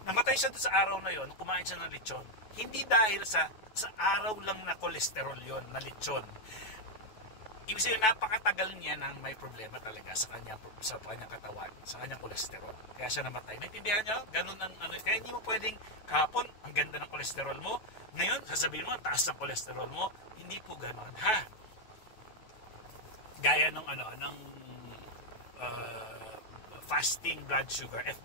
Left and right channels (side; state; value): right; late; 9.2 ms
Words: Namatay siya dun sa araw na yun, kumain siya ng lechon. Hindi dahil sa araw lang na cholesterol yun, na lechon. Ibig sabihin, napakatagal niya nang may problema talaga sa kanyang katawan, sa kanyang kolesterol. Kaya siya namatay. Naintindihan niyo? Ganun ang kaya hindi mo pwedeng kahapon, ang ganda ng kolesterol mo. Ngayon, sasabihin mo, ang taas ng kolesterol mo. Hindi po ganun. Ha? Gaya ng fasting blood sugar,